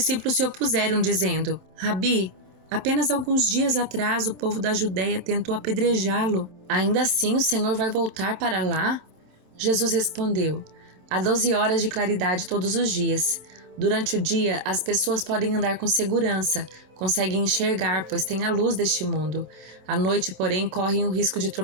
se opuseram, dizendo: Rabi, apenas alguns dias atrás o povo da Judeia tentou apedrejá-lo. Ainda assim o Senhor vai voltar para lá? Jesus respondeu: há 12 horas de claridade todos os dias. Durante o dia, as pessoas podem andar com segurança, conseguem enxergar, pois têm a luz deste mundo. À noite, porém, correm o risco de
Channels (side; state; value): left; late; 27 ms